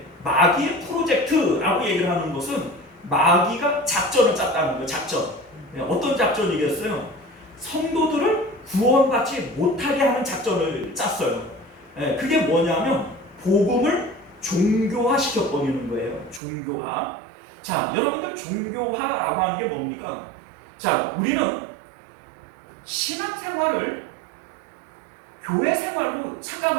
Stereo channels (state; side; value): drops out; left; at 16.4 s